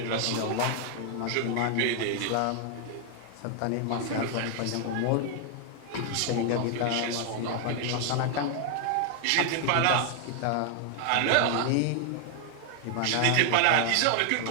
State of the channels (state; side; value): different; both; correlation 0.00